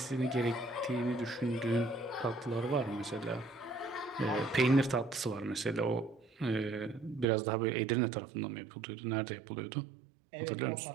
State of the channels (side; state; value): left; drops out; at 7.2 s